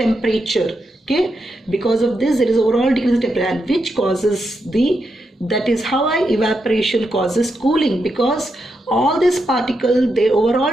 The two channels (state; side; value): normal; both; correlation 0.84